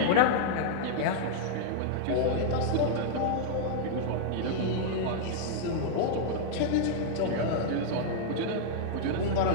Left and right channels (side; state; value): both; different; correlation -0.01